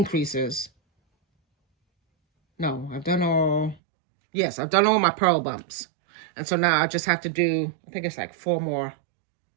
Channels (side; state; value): left; drops out; at 3.8 s